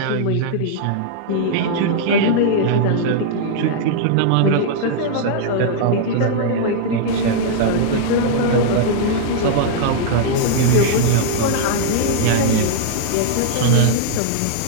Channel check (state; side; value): different; both; correlation -0.01